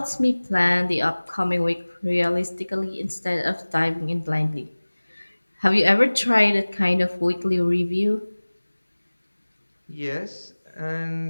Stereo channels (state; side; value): inverted; both; correlation -1.00